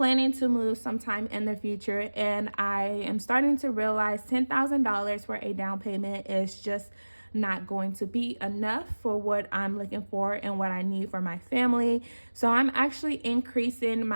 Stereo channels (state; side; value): inverted; both; correlation -1.00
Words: to move sometime in the future. And I am starting to realize $10,000 for a down payment is just not going to be enough for what I'm looking for and what I need for my family. So I'm actually increasing